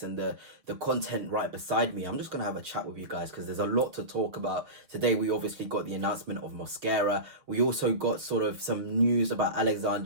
and the content right beside me. I'm just going to have a chat with you guys because there's a lot to talk about. Today we obviously got the announcement of Mosquera. We also got sort of some news about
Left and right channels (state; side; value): late; left; 6.7 ms